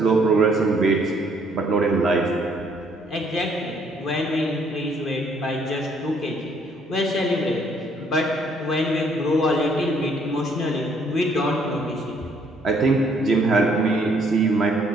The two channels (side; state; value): both; normal; correlation 0.66